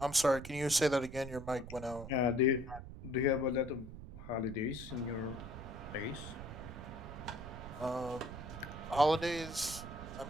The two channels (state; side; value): noise; right; rumble, 11 dB below the sound